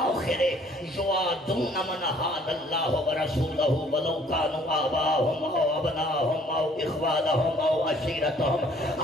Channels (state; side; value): normal; both; correlation 0.59